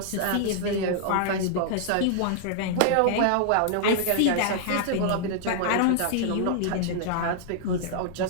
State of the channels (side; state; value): both; different; correlation -0.01